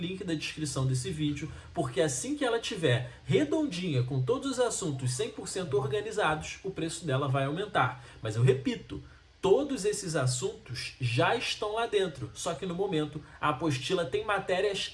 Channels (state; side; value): identical; both; correlation 1.00